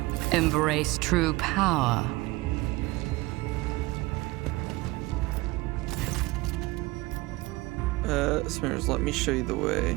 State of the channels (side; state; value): left; quieter; 21.2 dB